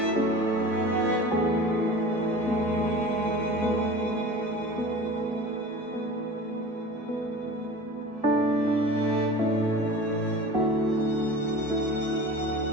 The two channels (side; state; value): both; normal; correlation 0.37